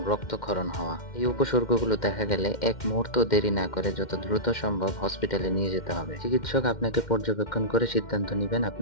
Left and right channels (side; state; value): right; late; 2.1 ms